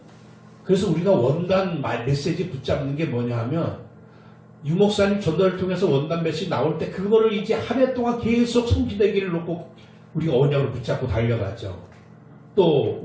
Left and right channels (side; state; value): both; identical; correlation 1.00